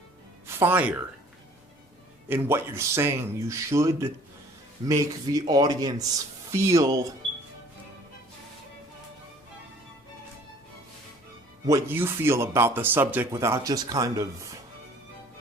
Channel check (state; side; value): normal; both; correlation 0.53